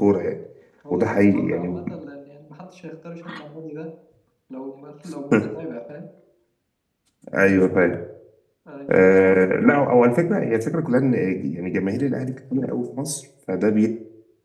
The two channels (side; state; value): both; identical; correlation 1.00